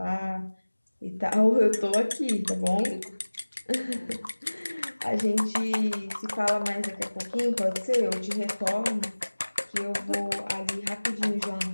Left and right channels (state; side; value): inverted; both; correlation -1.00